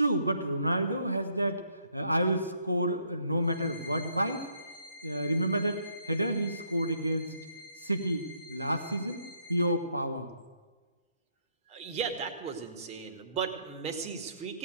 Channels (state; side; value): inverted; both; correlation -0.70